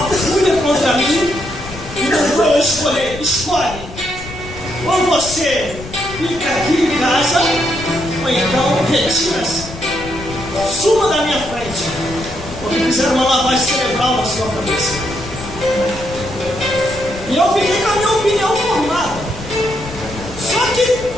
fúria contra mim e mandou eu escolher. Escolhe. Ou você fica aqui em casa, ou então retira-se. Suma da minha frente. Porque fizeram uma lavagem cerebral na sua cabeça. E eu fiquei com a minha opinião formada. Só que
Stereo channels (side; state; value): left; noise; rumble, 13 dB below the sound